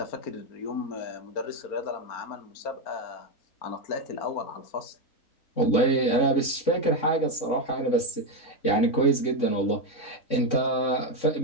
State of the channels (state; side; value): late; right; 3.6 ms